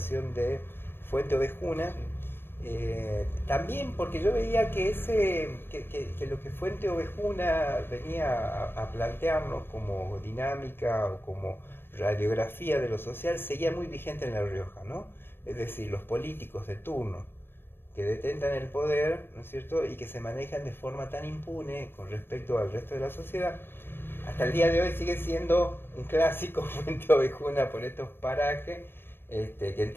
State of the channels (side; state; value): right; late; 0.10 ms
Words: de Fuente Ovejuna. También porque yo veía que lo que Fuente Ovejuna venía a plantearnos como dinámica o como radiografía de lo social seguía muy vigente en La Rioja, ¿no? Es decir, los políticos de turno que detentan el poder, ¿no es cierto?, y que se manejan de forma tan impune con respecto al resto de la sociedad. Hasta el día de hoy sigue siendo un clásico Fuente Ovejuna por estos parajes, que